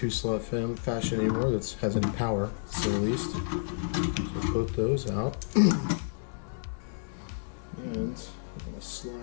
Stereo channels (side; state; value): right; silent; digital silence